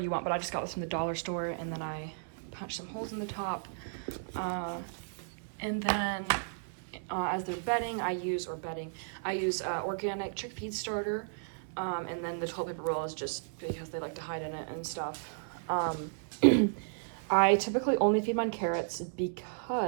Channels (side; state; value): left; silent; digital silence